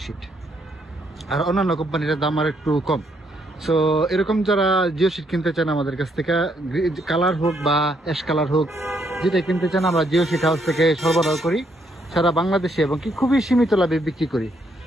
শিট। আর অন্যান্য কোম্পানির দাম আর একটু কম। সো এরকম যারা জিও শিট কিনতে চান আমাদের কাছ থেকে, কালার হোক বা অ্যাশ কালার হোক, যেটা কিনতে চান আমরা জিও শিট হাউস থেকে সরবরাহ করি সারা বাংলাদেশে, এবং কি খুবই সীমিত লাভে বিক্রি করি।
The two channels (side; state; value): both; normal; correlation 0.73